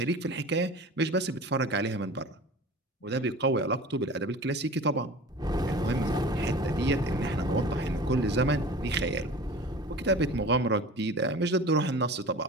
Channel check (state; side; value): normal; both; correlation 0.39